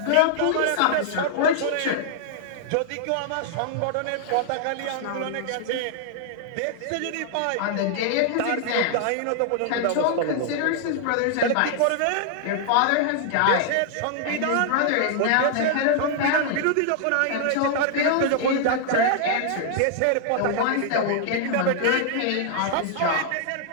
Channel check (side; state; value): both; different; correlation -0.01